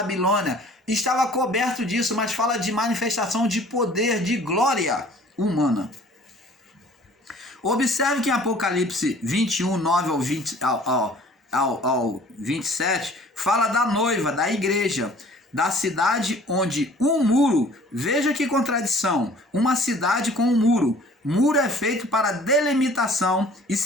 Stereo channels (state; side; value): normal; both; correlation 0.52